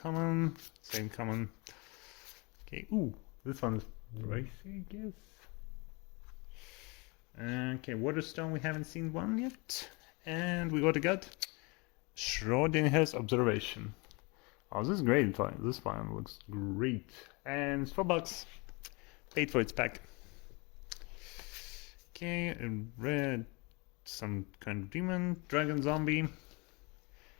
same common. Okay, ooh, this one's pricey, I guess. Okay, Waterstone, we haven't seen one yet. And we got Schrodinger's Observation. Oh, this is great. This one looks great. And it's $4. paid for its pack. Okay, a red, some kind of demon, dragon, zombie,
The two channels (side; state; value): right; quieter; 28.4 dB